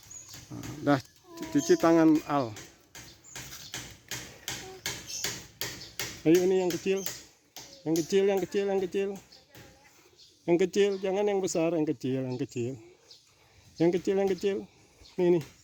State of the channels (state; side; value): identical; both; correlation 1.00